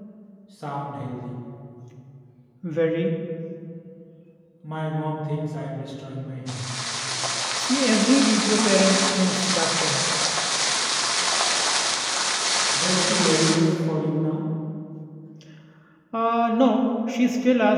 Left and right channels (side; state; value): both; identical; correlation 1.00